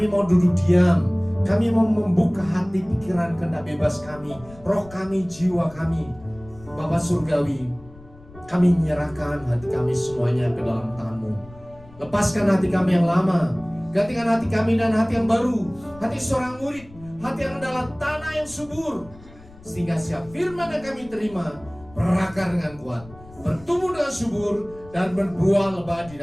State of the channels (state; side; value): noise; left; rumble, 22 dB below the sound